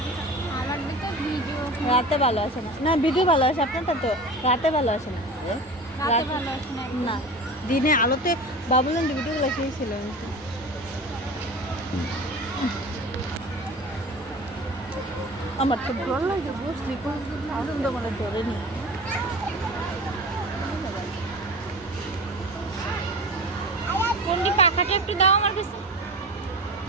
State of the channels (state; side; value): noise; left; rumble, 29 dB below the sound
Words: আমার তো ভিডিও রাতে ভালো আসে না। না ভিডিও ভালো আসে, আপনারটা তো রাতে ভালো আসে না। রাতে ভালো আসে না। না দিনে আলোতে বাবুলেন ভিডিওগুলো সেই ছিল। আমার তো ভালো লাগে, বসলি আনন্দ মানে ধরে নি। কোনটি পাখাটা একটু দাও আমার কাছে।